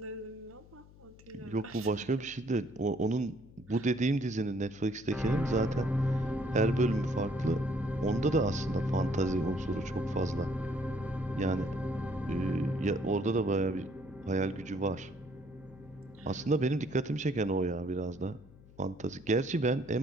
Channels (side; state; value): left; noise; hum, 22 dB below the sound